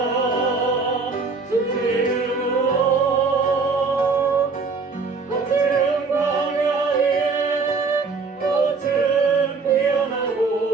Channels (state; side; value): quieter; left; 4.4 dB